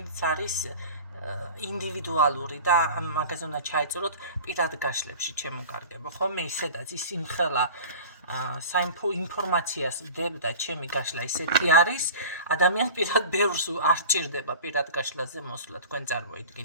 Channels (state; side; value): inverted; both; correlation -0.38